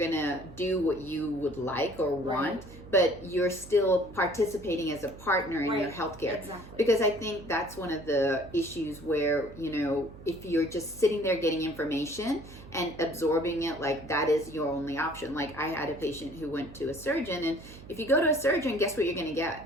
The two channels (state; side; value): noise; right; hum, 17 dB below the sound